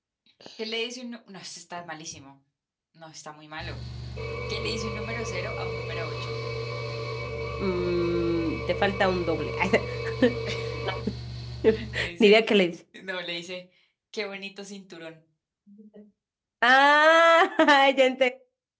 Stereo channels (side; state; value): both; identical; correlation 1.00